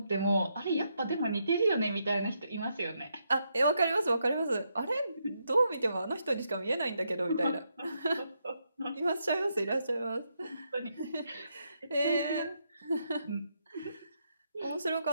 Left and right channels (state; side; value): inverted; both; correlation -0.79